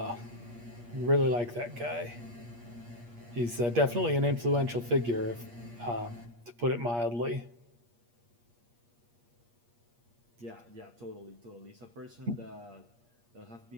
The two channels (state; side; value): late; left; 8.5 ms